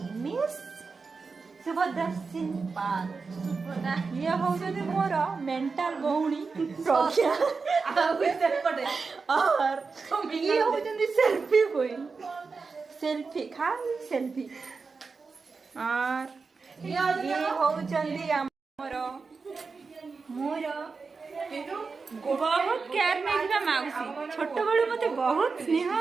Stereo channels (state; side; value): quieter; left; 4.6 dB